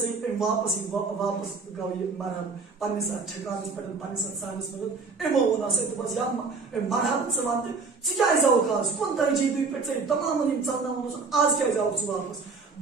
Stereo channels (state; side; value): quieter; left; 4.4 dB